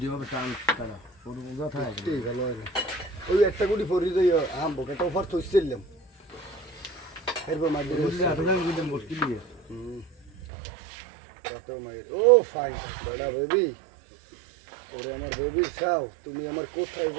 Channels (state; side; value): drops out; left; at 10.3 s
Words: যেভাবে টান কাটা ওর কথা ভালো হয় না ওই একটা গুটি ফরি দিই আম বোকাটা ফার থইছিলাম এরপর মার দিয়ে মুশকিল দিয়ে কত মাই ও ফাইন বড়া বেবি ওরে আমার বেবি চাও তুমি আমার কোথায়